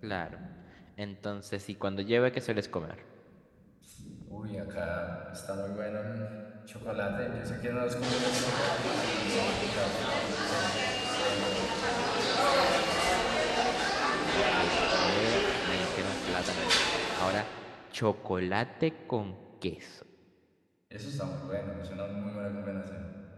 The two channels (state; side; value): identical; both; correlation 1.00